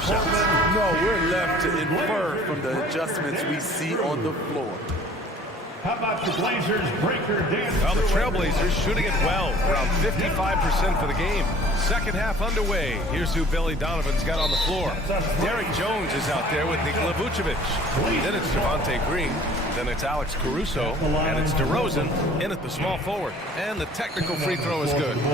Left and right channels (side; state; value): both; normal; correlation 0.51